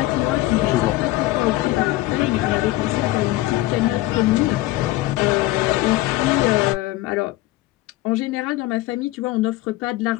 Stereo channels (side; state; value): right; quieter; 17.2 dB